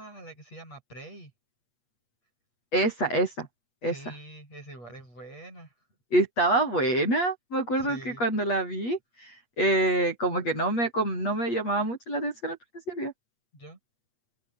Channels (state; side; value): late; right; 8.4 ms